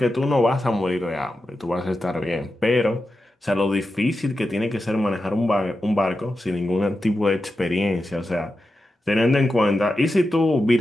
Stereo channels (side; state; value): both; normal; correlation 0.90